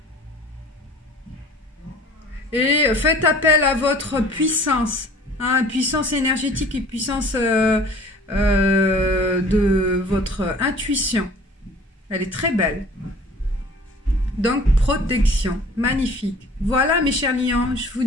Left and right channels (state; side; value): normal; both; correlation 0.48